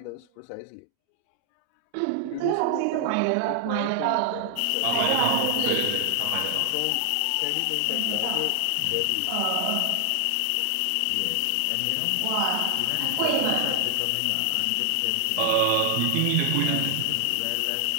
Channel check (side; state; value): both; different; correlation 0.00